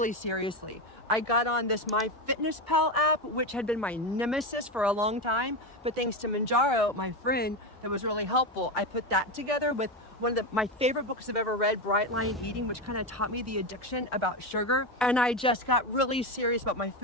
seriously. I got on this MyFitnessPal app, which had been my nemesis for a long time. But thanks to Mounjaro, my friend, that was really helpful. I put that together with one of my favorite books I've ever read, Bright Line Eating, which kind of taught me the addiction about sugar. And I just got really serious about my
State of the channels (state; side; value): normal; both; correlation 0.14